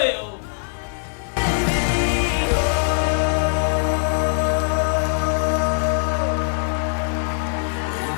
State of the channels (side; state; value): right; silent; digital silence